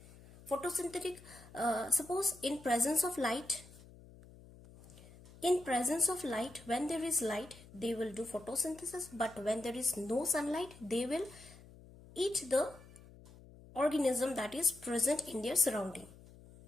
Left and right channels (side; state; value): left; noise; hum, 21 dB below the sound